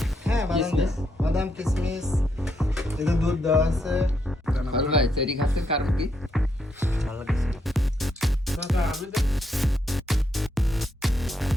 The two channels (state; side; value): normal; both; correlation 0.78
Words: হ্যাঁ, বাদাম কিশমিশ, এটা দুধ দেওয়া আছে। ভাই চেরি খাচ্ছে কারণ কি? ভালো লাগছে।